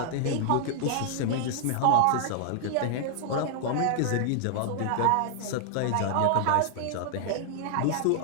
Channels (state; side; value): different; both; correlation -0.01